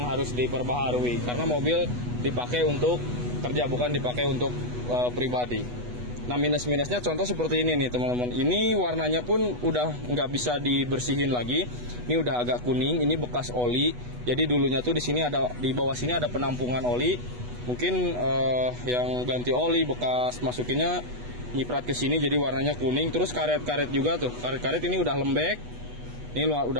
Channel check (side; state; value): left; late; 8.2 ms